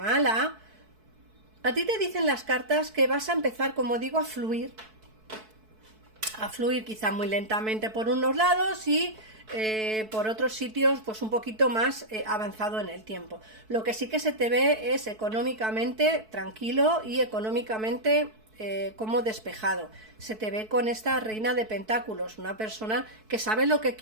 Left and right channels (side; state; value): left; late; 4.6 ms